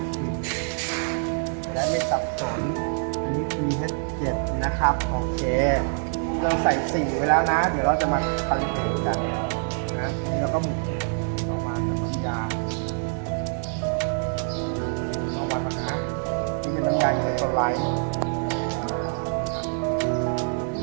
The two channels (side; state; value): left; silent; 61 dB below the other